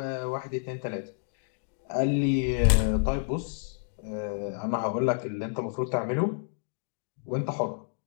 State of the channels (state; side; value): silent; right; digital silence